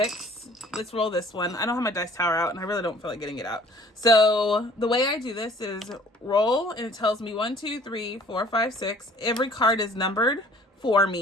Let's roll this one. I don't have my dice tower out, and I really don't feel like getting it out. So the way I do this is roll, and it tells me 1, 2, 3, 4, 5, 6. Every card is numbered for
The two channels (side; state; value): both; normal; correlation 0.52